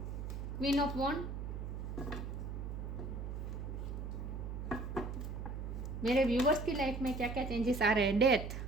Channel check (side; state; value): right; noise; hum, 5 dB below the sound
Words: क्वीन ऑफ वॉन्ड। मेरे व्यूअर्स की लाइफ में क्या क्या चेंजेस आ रहे हैं। डेथ,